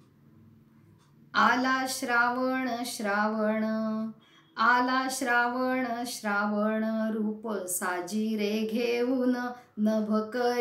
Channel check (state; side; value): identical; both; correlation 1.00